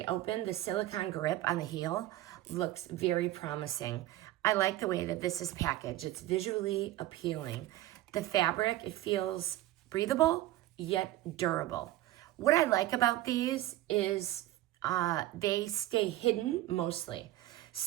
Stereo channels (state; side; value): quieter; left; 15.4 dB